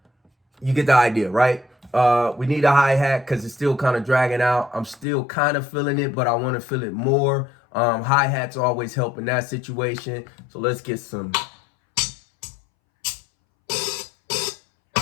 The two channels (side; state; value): right; drops out; at 5.1 s